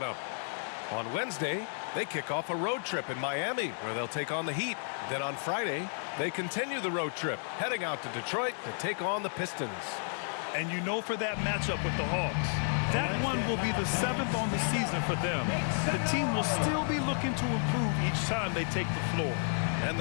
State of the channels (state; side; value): silent; right; 56 dB below the other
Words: up. On Wednesday, they kick off a road trip in Miami, where they'll take on the Heat. Then on Friday, they continue the road trip, heading out to Detroit to take on the Pistons. And you know, for that matchup with the Hawks, that one will be the 7th on the season for them. The team will still be looking to improve each time they take the floor. And